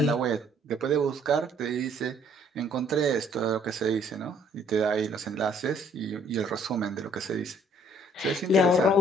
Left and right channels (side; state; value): both; normal; correlation 0.62